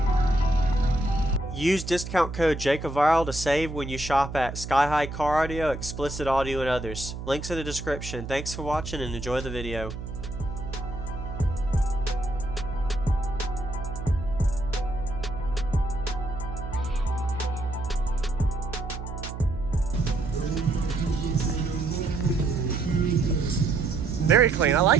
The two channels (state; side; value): noise; right; hum, 8 dB below the sound